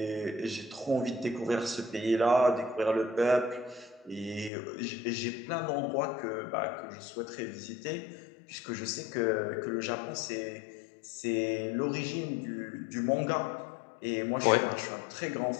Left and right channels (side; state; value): right; drops out; at 4.5 s